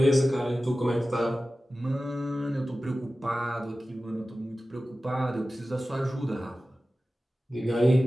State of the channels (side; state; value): both; normal; correlation 0.95